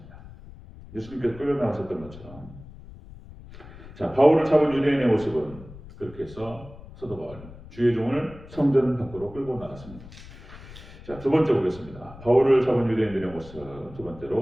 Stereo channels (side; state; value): left; noise; rumble, 17 dB below the sound